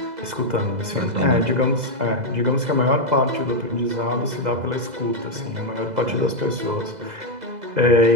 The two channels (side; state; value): left; late; 2.0 ms